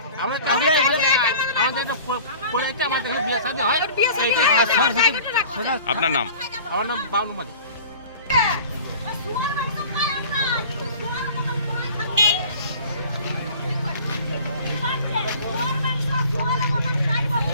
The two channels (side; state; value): both; inverted; correlation -0.44